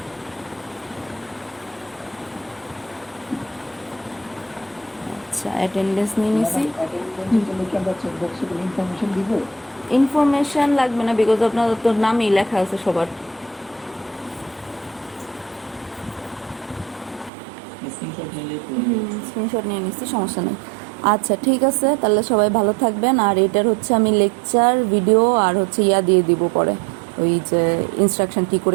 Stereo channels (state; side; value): drops out; left; at 17.3 s